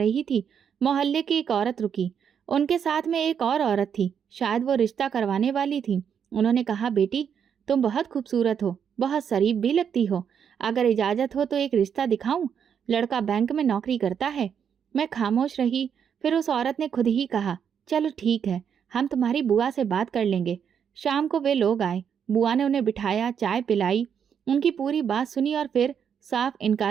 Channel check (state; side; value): quieter; left; 7.8 dB